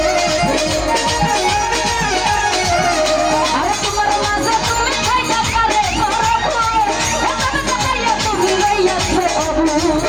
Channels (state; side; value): noise; left; hum, 14 dB below the sound